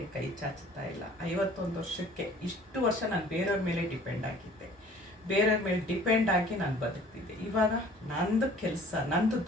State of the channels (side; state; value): both; normal; correlation 0.51